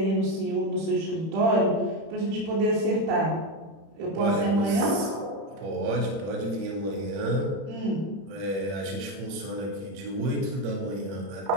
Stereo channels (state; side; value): late; left; 31 ms